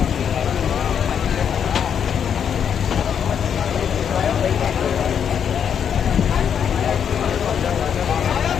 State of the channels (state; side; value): quieter; right; 8.0 dB